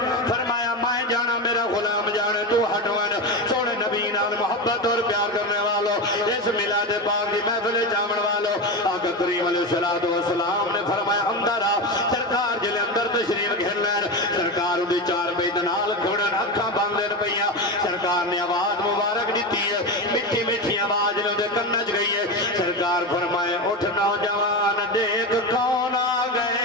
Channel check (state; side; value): normal; both; correlation 0.19